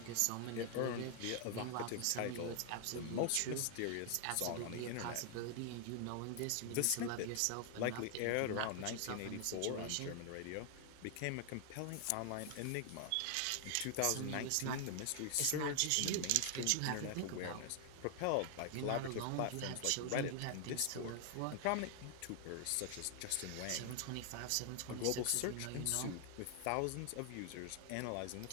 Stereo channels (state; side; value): different; both; correlation 0.00